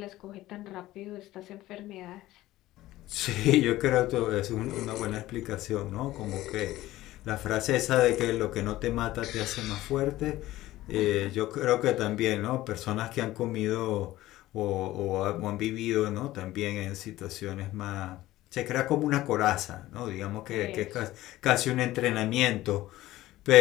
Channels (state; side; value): quieter; right; 16.1 dB